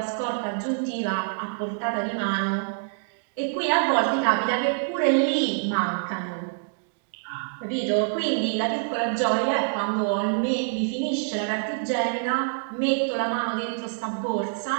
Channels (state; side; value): silent; left; digital silence